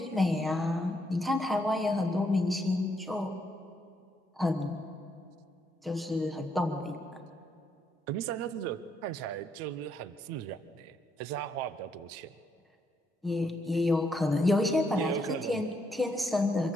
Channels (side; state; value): both; normal; correlation 0.75